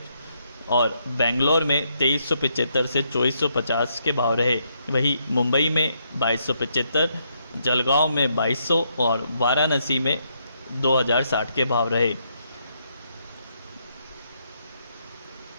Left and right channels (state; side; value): inverted; both; correlation -0.76